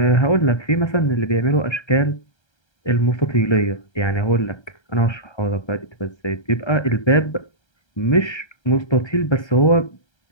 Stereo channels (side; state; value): right; late; 1.3 ms